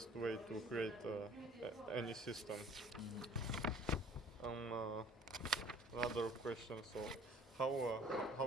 way to create any system. Another question. So, how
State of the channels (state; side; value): normal; both; correlation 0.51